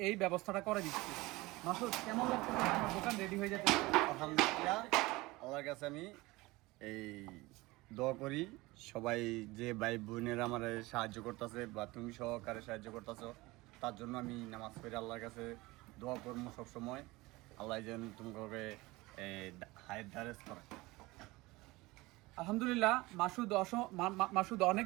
এই ব্যবস্থাটা করে দিচ্ছি। মাসুদ, কেমন লাগছে আমার দোকান রেডি হয়ে যাচ্ছে? আলহামদুলিল্লাহ, আল্লাহর কাছে আমি এই দোয়া করি সবাই যে ভাই বোনেরা আমার সাহায্য করতেছে বা তুমি সহকারে সাহায্য করতেছো, তার জন্য আমি নামাজ পড়ে আল্লাহর কাছে দোয়া করবো সবসময়। আল্লাহ যেন তোমাকে হায়াত দারাজ করে। আলহামদুলিল্লাহ, মাসুদ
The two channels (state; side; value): quieter; left; 21.2 dB